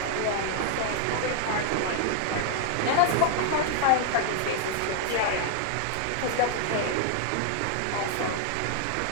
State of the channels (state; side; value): different; both; correlation 0.00